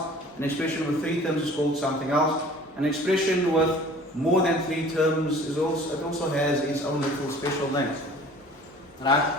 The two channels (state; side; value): normal; both; correlation 0.47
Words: an expression with three terms is called something else, an expression with more than three terms it also has its own little special name. Right?